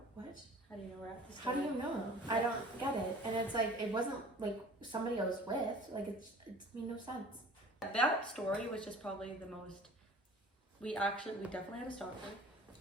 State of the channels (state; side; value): normal; both; correlation 0.46